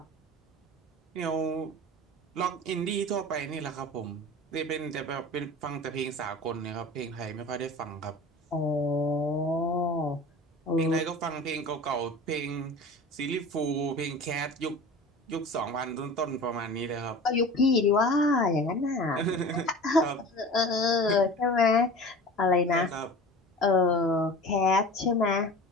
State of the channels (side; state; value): both; normal; correlation 0.37